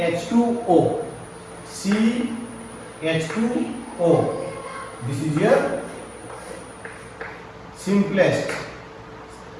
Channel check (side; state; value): both; identical; correlation 1.00